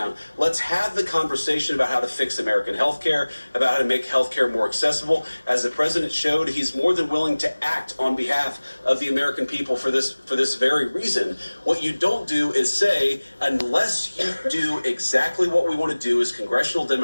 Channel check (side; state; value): both; inverted; correlation -1.00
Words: Let's have the conversation about how to fix American health care, about how to make health care more accessible. As the president showed, he's more than willing to act on behalf of the American people for this very reason. What you don't do is say, unless you do exactly what we want to do as congressional